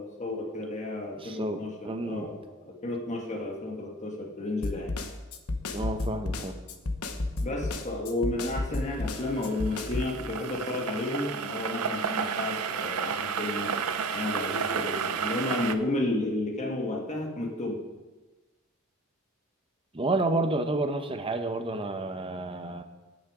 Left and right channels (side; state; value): both; normal; correlation 0.43